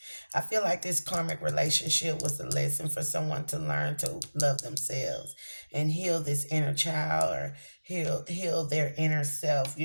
I feel like this karmic relationship was a lesson for someone to learn to love themselves and heal this inner child, or heal their inner self,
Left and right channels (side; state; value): both; inverted; correlation -1.00